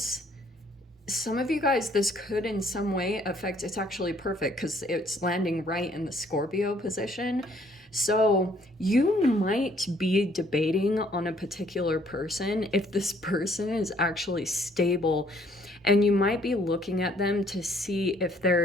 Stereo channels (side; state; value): both; normal; correlation 0.64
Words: some of you guys, this could in some way affect, it's actually perfect because it's landing right in the Scorpio position. So you might be debating on a particular person if this person is actually stable, and you might be looking at them to see if